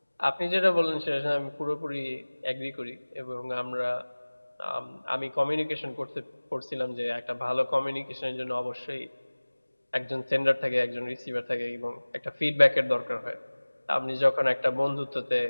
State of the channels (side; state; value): both; inverted; correlation -1.00